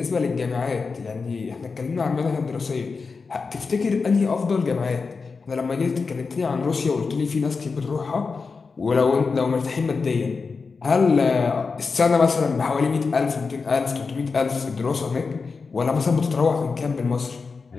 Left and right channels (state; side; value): quieter; right; 4.7 dB